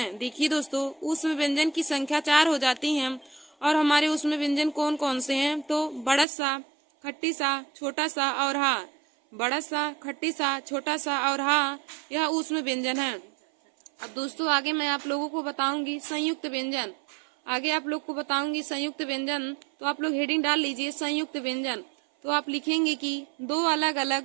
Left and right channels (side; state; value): left; drops out; at 6.2 s